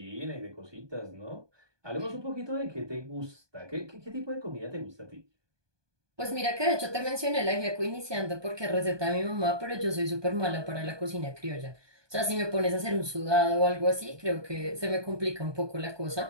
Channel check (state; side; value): late; left; 1.2 ms